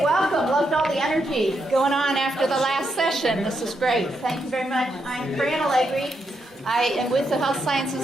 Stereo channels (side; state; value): both; normal; correlation 0.81